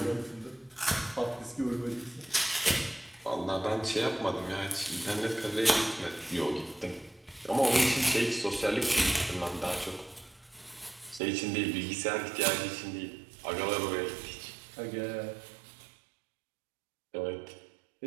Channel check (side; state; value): left; drops out; at 11.2 s